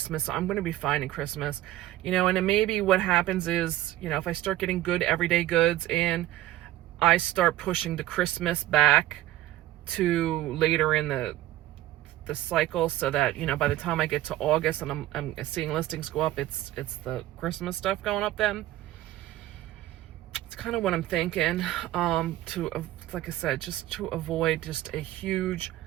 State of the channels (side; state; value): left; quieter; 15.0 dB